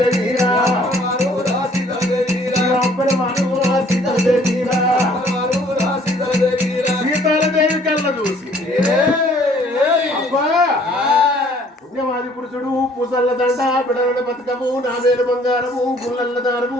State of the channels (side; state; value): both; normal; correlation 0.58